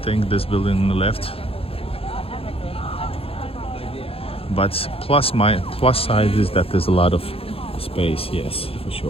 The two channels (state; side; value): late; right; 0.27 ms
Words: this building on the left. But plus side is that there's a lot of space, yes, for